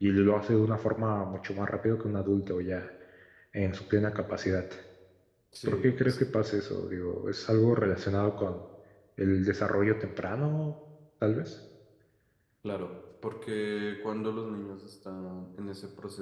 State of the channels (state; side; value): identical; both; correlation 1.00